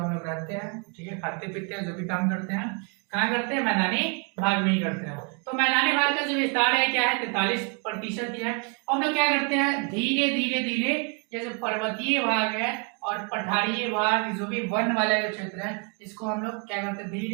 हम लोग रहते हैं, ठीक है, खाते पीते हैं, जो भी काम करते हैं कहाँ करते हैं? मैदानी भाग में ही करते हैं। तो मैदानी भाग का जो विस्तार है क्या है? 43% ही है। और हम लोग क्या करते हैं? धीरे धीरे ये जो पर्वतीय भाग है और पठारी भाग जो भी वन वाला जो क्षेत्र है इसको हम लोग क्या करते हैं?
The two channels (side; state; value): left; quieter; 34.9 dB